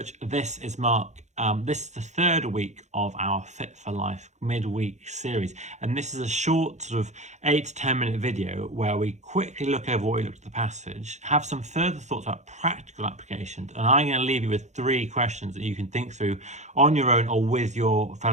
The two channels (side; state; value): left; late; 0.34 ms